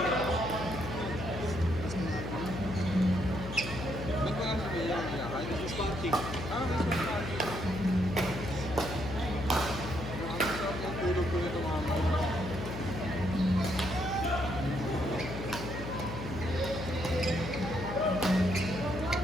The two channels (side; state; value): left; noise; hum, 7 dB below the sound